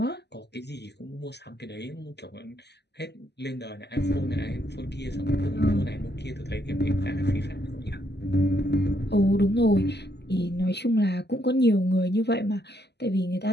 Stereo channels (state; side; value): late; right; 0.49 ms